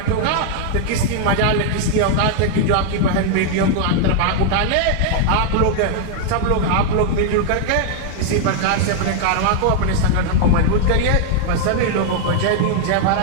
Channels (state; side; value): different; both; correlation 0.00